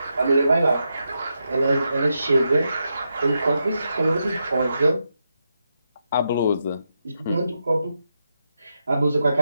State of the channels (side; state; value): both; inverted; correlation -0.85